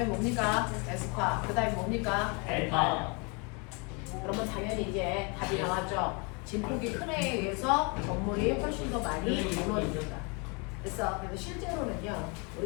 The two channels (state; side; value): quieter; right; 32.2 dB